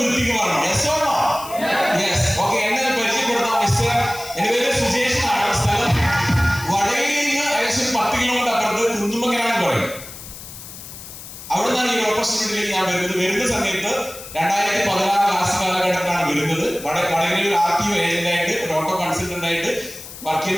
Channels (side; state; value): left; noise; hiss, 14 dB below the sound